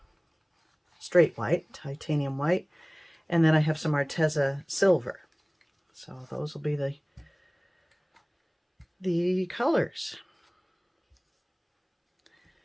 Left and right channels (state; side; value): identical; both; correlation 1.00